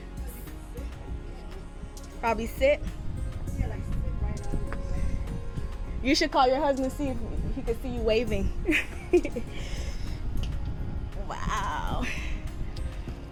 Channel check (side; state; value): both; identical; correlation 1.00